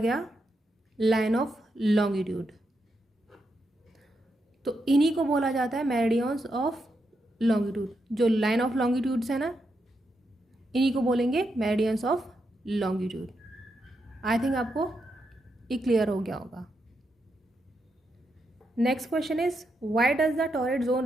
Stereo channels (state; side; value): normal; both; correlation 0.83